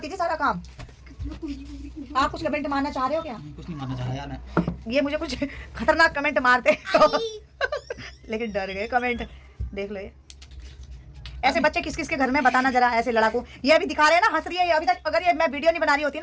थी सारा काम। आप कुछ कमेंट मारना चाह रहे हो क्या? कुछ नहीं मानना चाह रहा यार मैं। ये मुझे कुछ खतरनाक कमेंट मारते तो लेकिन डर गए कमेंट। देख लो ये ऐसे बच्चे किस किस के घर में बताना जरा, ऐसे लड़ाकू। ये अभी दिखा रहे हैं ना, हंस रही है ये अभी तक। अगर ये मैं वीडियो नहीं बना रही होती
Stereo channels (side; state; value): both; identical; correlation 1.00